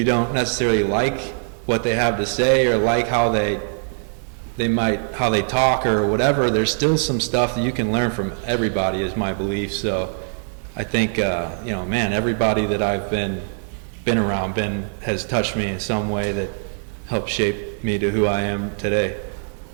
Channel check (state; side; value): silent; left; digital silence